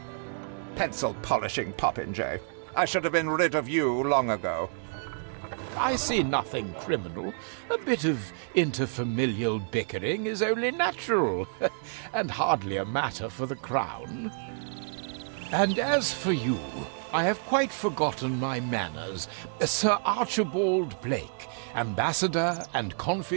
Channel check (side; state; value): left; silent; digital silence